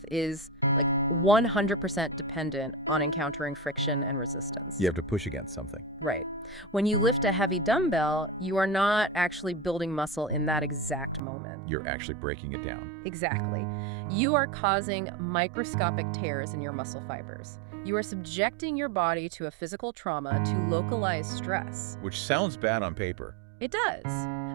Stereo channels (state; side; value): drops out; left; at 11.2 s